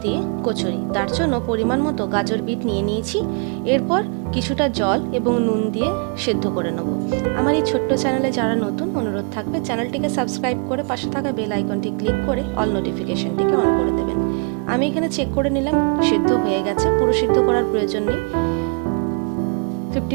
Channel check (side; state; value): left; quieter; 37.5 dB